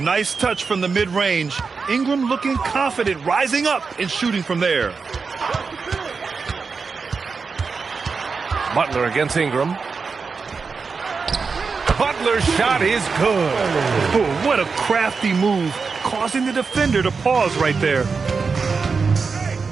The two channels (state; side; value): quieter; left; 4.9 dB